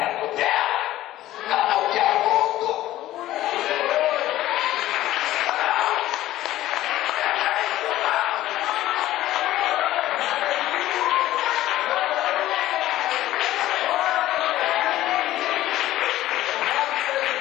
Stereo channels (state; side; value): quieter; right; 14.8 dB